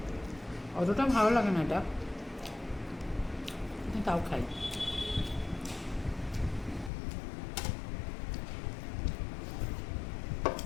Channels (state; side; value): drops out; right; at 6.9 s